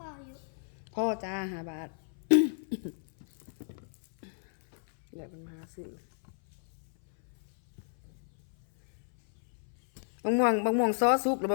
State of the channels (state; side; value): silent; right; 56 dB below the other